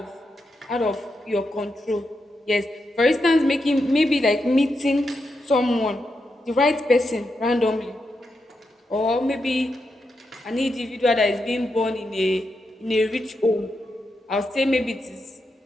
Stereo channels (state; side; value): normal; both; correlation 0.85